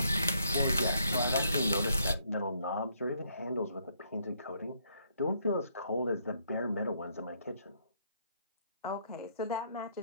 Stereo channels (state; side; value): inverted; both; correlation -0.71